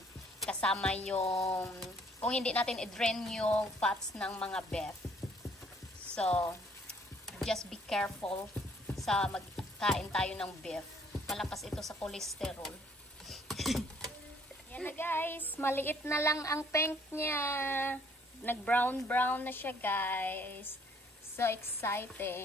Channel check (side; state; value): both; normal; correlation 0.62